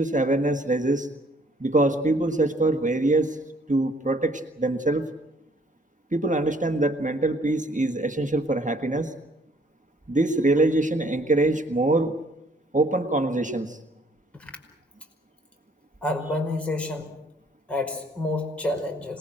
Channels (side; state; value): both; normal; correlation 0.62